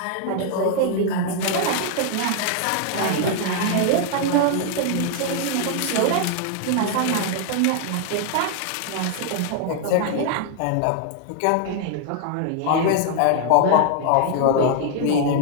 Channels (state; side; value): different; both; correlation 0.00